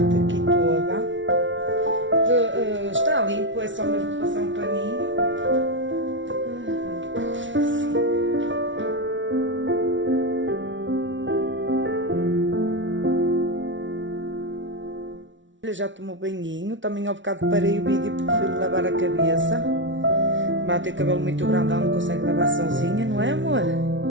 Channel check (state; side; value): late; left; 0.55 ms